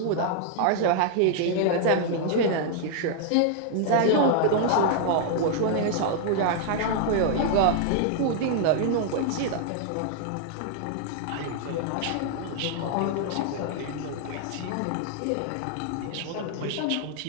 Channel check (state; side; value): different; both; correlation 0.00